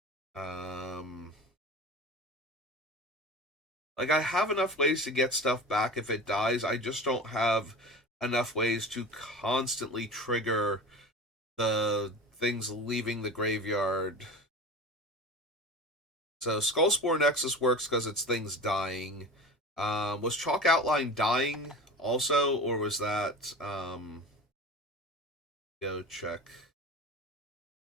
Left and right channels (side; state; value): both; normal; correlation 0.33